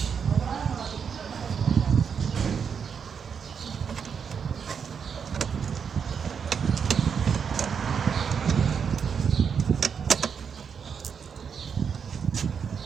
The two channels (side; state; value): left; quieter; 6.8 dB